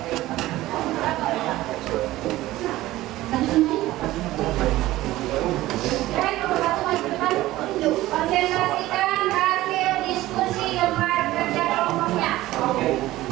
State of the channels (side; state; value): left; quieter; 16.5 dB